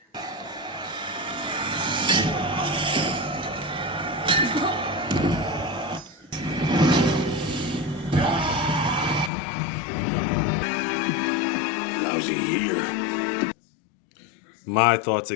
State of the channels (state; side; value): drops out; right; at 9.3 s